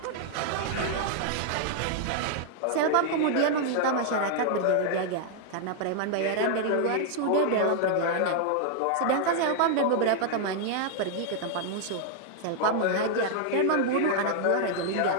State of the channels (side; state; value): both; different; correlation 0.00